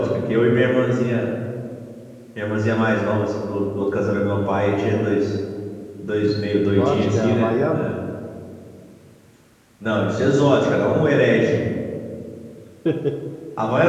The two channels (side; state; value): both; identical; correlation 1.00